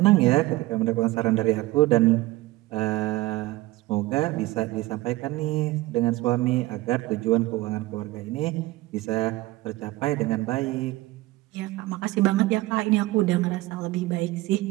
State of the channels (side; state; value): left; quieter; 19.1 dB